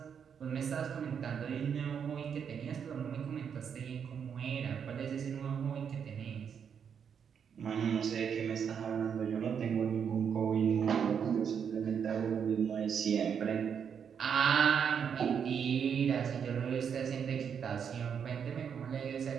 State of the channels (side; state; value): left; quieter; 7.4 dB